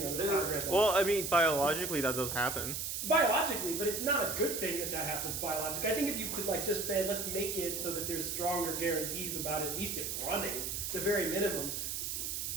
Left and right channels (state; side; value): noise; right; hiss, 3 dB below the sound